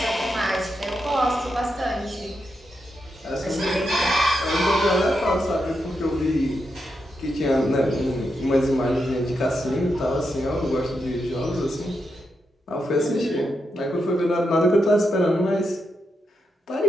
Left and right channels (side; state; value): both; normal; correlation 0.85